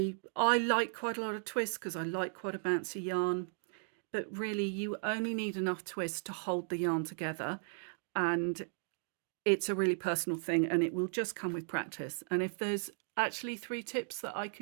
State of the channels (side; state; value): left; silent; 54 dB below the other